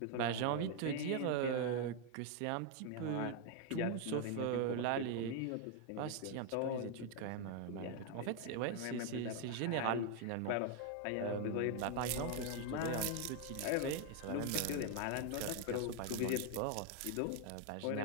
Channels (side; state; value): both; different; correlation 0.01